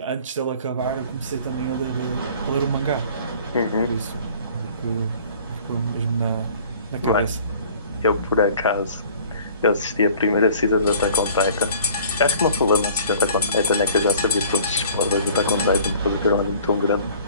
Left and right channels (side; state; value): both; inverted; correlation -0.51